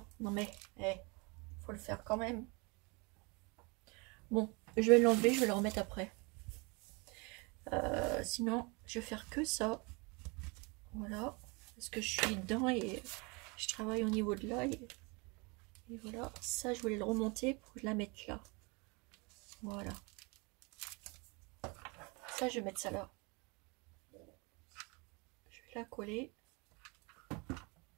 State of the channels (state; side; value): quieter; left; 29.3 dB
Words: Non mais, faut le faire quand même. Bon, je vais l'enlever, je vais le remettre après. Sinon, je vais faire que ça. Voilà. Parce que je suis dedans et je travaille au niveau de là. Et voilà. Ça, je voulais le remonter pour la mettre là. Voilà. Ça, je vais mettre ça là. Je vais la coller.